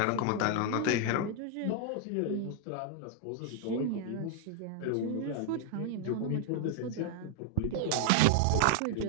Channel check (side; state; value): both; different; correlation 0.00